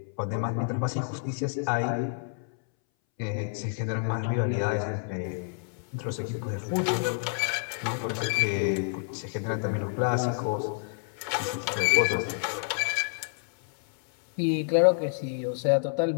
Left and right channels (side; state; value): right; silent; 59 dB below the other